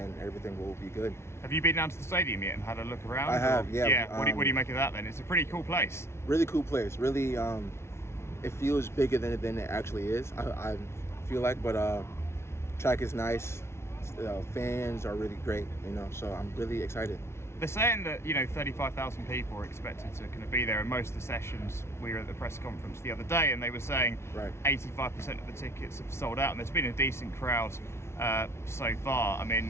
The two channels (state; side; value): late; right; 0.13 ms